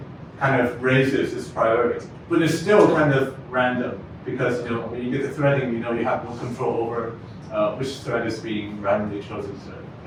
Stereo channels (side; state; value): both; identical; correlation 1.00